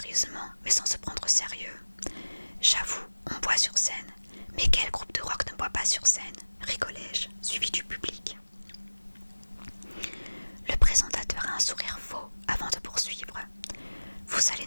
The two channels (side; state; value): both; inverted; correlation -1.00